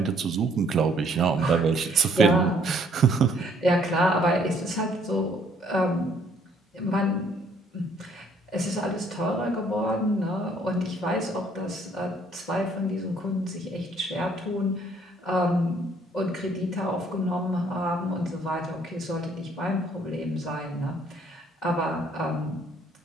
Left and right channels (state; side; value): normal; both; correlation 0.64